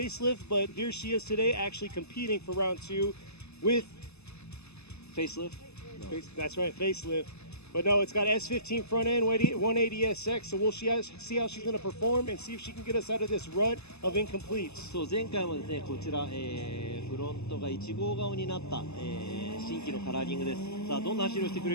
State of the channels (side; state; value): right; late; 0.80 ms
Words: but here she is today actually competing for round 2 with Facelift? No. That's right, facelift. But no, it's got S15 front end, 180SX, so we'll see how she's going to perform and see if she can get us out of this rut of incompletes. そう、前回もですね、こちら、フロントが1号顔になった、新規のカラーリングです。さあ、どんな走りをしてく